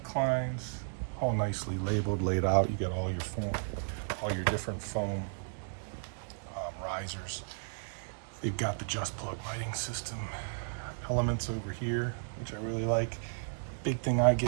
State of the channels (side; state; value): left; silent; 55 dB below the other